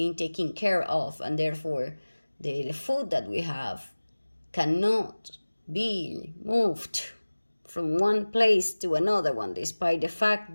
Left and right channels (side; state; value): both; inverted; correlation -1.00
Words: taken care of, and therefore the food that we have cannot be moved from one place to another one, despite the